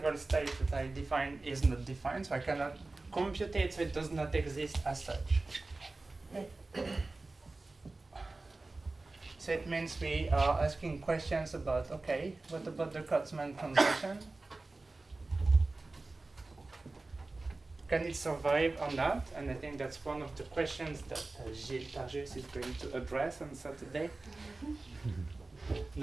states that I define is not defined, so I cannot compute it, so it does not exist as such. Okay. So it means we are asking questions about, okay, what about the Kurtzman transition? Can it survive or not? And I think that's one of the questions that Gilles Targis is going to address on Saturday.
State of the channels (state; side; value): quieter; left; 3.3 dB